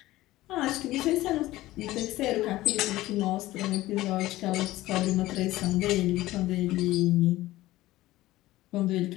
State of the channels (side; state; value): right; quieter; 16.9 dB